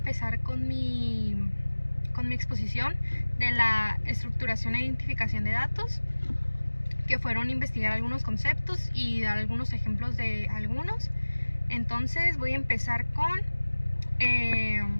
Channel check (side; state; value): both; inverted; correlation -1.00